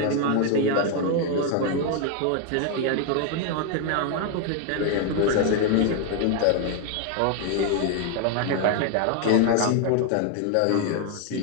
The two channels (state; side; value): different; both; correlation 0.00